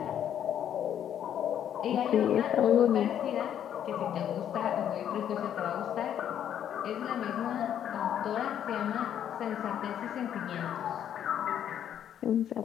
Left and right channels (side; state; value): right; quieter; 9.8 dB